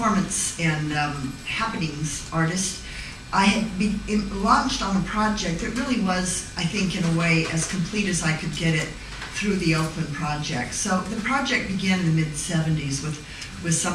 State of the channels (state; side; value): identical; both; correlation 1.00